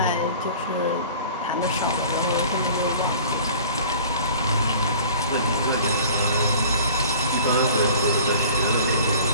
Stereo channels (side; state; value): both; inverted; correlation -0.46